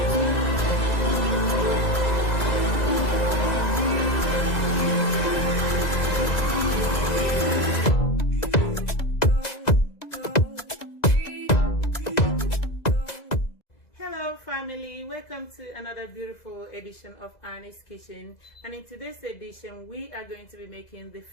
family, welcome to another beautiful edition of Annie's Kitchen, and in today's edition we are going to be making the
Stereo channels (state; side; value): late; right; 2.0 ms